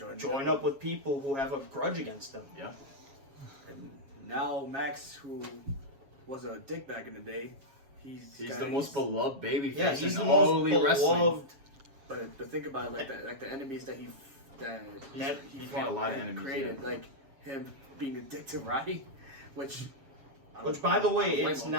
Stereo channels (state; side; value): late; left; 7.3 ms